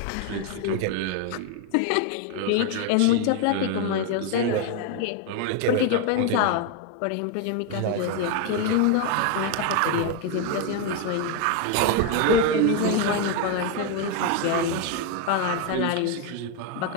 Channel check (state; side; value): different; both; correlation 0.01